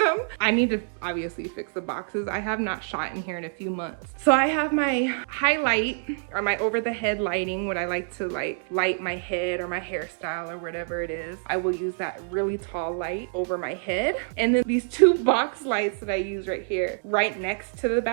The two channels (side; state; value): left; silent; digital silence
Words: I need to obviously fix the boxes. I have not shot in here in a few months. So I have my highlight or my over the head lighting, what I like to like light my head or my hairstyle or whatever it is. I will use that really tall light over my head. And then these 2 box lights that I use right here, right next to the